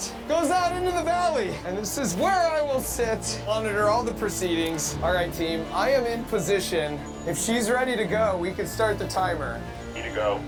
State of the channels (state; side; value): identical; both; correlation 1.00